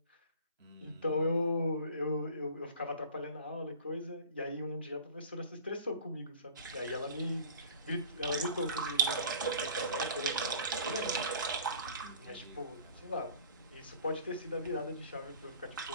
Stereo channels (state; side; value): inverted; both; correlation -0.46